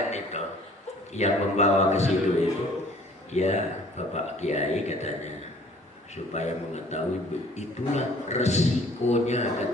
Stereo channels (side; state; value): both; normal; correlation 0.54